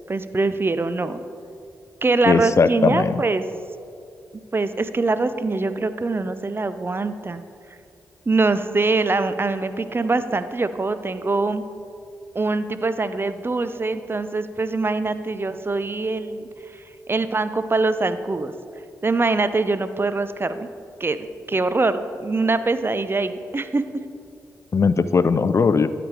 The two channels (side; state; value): both; normal; correlation 0.79